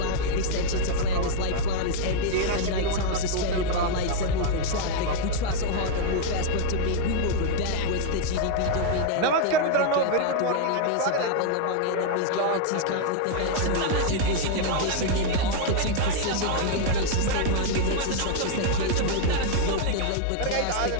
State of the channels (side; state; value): both; different; correlation 0.00